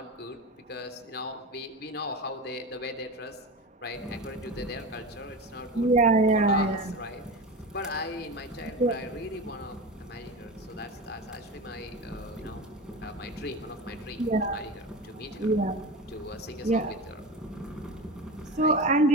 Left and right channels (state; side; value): normal; both; correlation 0.26